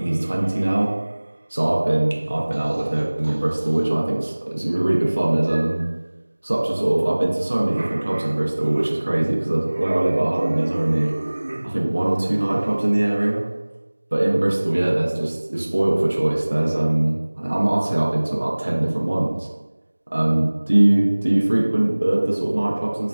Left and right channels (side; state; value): both; inverted; correlation -1.00